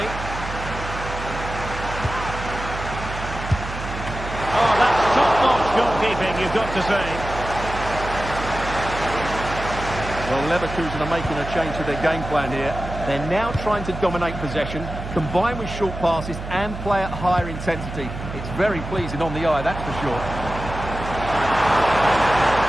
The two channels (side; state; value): right; noise; hum, 8 dB below the sound